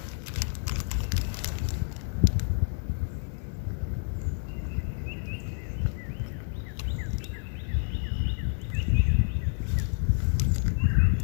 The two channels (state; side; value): silent; right; digital silence